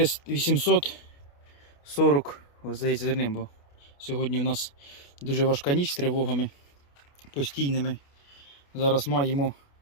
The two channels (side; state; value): right; late; 28 ms